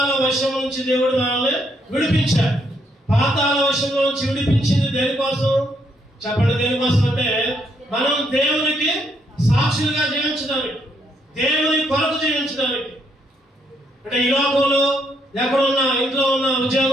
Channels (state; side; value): normal; both; correlation 0.74